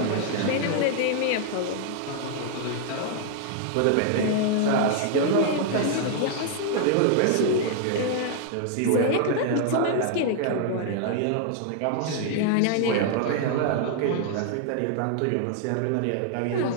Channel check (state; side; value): different; both; correlation 0.00